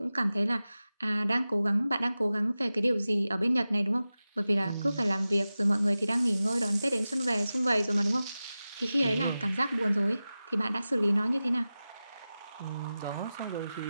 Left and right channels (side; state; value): both; inverted; correlation -0.95